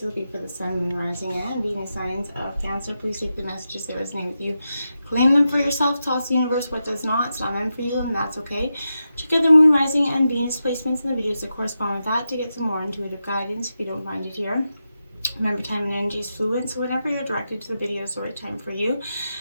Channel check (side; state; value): both; inverted; correlation -0.89